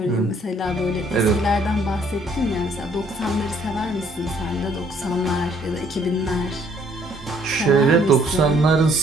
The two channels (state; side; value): normal; both; correlation 0.64